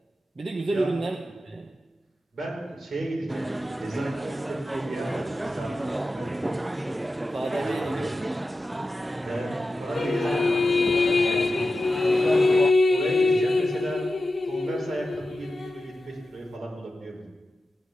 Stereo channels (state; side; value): normal; both; correlation 0.92